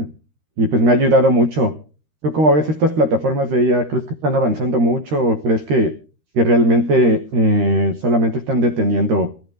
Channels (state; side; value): late; left; 13 ms